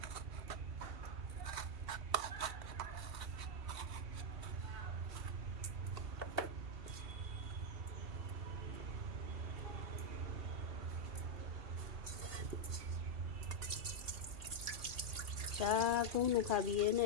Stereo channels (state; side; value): late; left; 2.7 ms